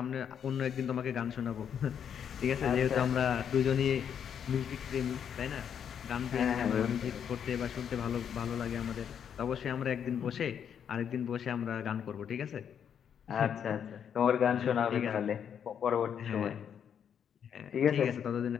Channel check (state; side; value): quieter; right; 8.3 dB